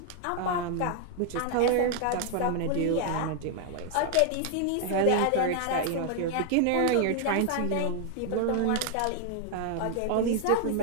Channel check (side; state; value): both; different; correlation 0.00